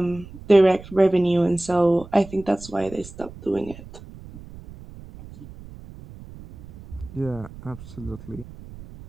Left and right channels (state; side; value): noise; right; rumble, 17 dB below the sound